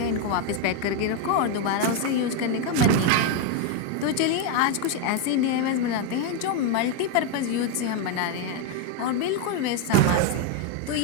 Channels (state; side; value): different; both; correlation 0.01